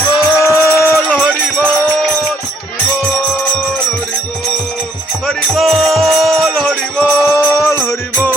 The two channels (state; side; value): normal; both; correlation 0.67